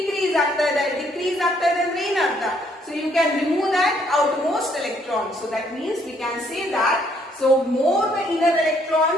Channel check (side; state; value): both; normal; correlation 0.67